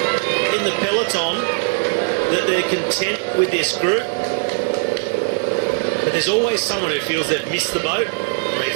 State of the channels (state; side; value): silent; left; 66 dB below the other